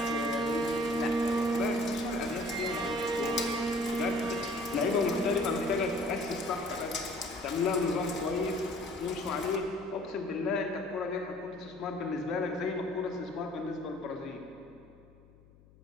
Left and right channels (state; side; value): noise; left; hum, 26 dB below the sound